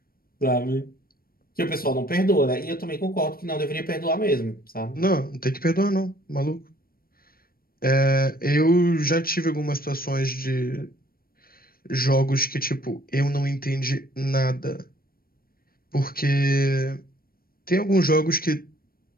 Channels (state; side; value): late; right; 0.43 ms